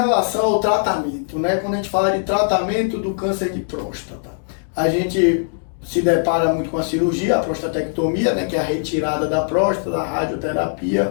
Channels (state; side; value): silent; right; digital silence